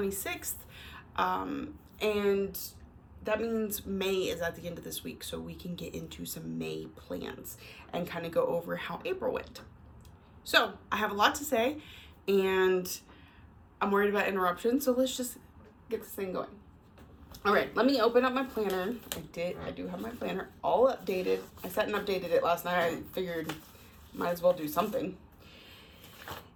and that means May is at the end of this week, so we can get into some May plans and kind of go over how April went. So I have a lot to say, and I'm worried about interruptions, so let's just get this thing going. All right, let me open up my planner. I do have my planner all updated. I sat and updated it last night. I figured might as well do something.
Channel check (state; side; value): identical; both; correlation 1.00